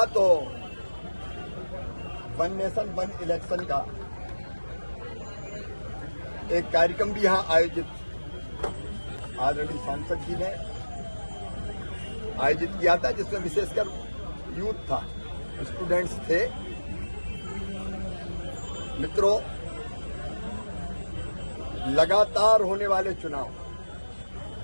तो वन नेशन वन इलेक्शन का एक कार्यक्रम भी यहां आयोजित आदरणीय सांसद जी ने आयोजित किया था, जिसमें विशेषकर यूथ था, स्टूडेंट्स थे। मित्रों, लगातार होने वाले चुनाव,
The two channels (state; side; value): inverted; both; correlation -1.00